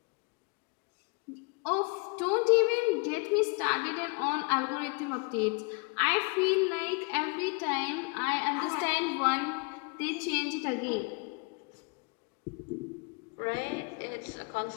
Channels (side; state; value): right; quieter; 32.4 dB